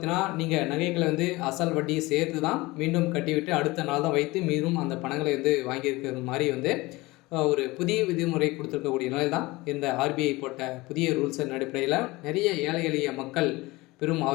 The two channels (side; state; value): right; quieter; 21.5 dB